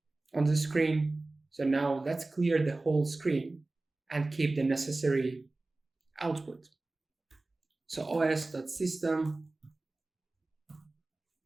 on the screen. So now let's clear the whole screen and keep the necessary output. So os.system,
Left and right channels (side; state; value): left; quieter; 3.1 dB